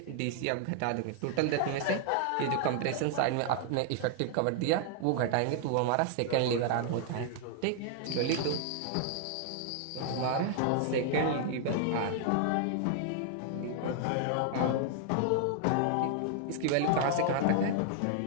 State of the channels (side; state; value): both; different; correlation 0.00